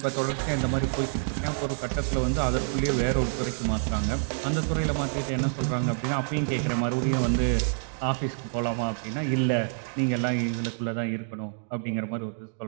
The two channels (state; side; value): silent; left; 60 dB below the other